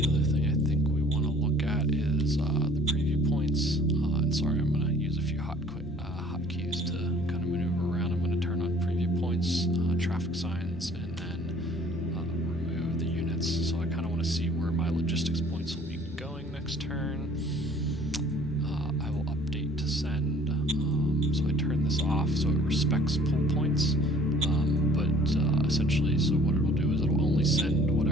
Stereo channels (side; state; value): both; normal; correlation 0.54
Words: other thing I think we want to look at is the preview points. And sorry, I'm going to use a few hotkeys to kind of maneuver around. I'm going to turn on preview points, traffic signs, and then remove the units. So I kind of want to see where my logistics points will be going next turn. I will update to send. So I turn this off so it respects pull points. Essentially, so what it'll do is it'll only send